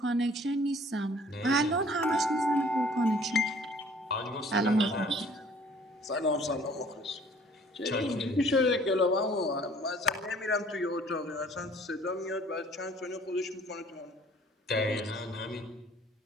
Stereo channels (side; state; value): both; normal; correlation 0.55